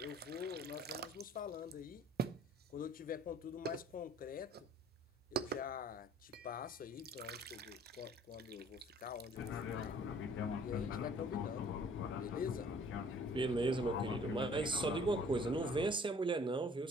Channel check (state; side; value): normal; both; correlation 0.54